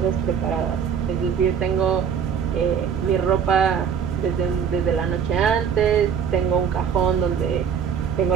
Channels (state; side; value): quieter; left; 7.4 dB